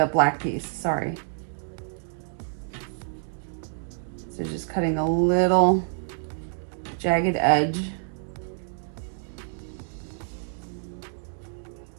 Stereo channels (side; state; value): left; silent; digital silence